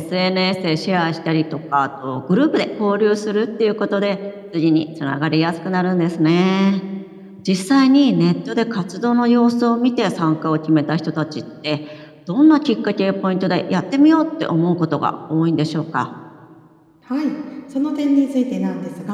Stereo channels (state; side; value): identical; both; correlation 1.00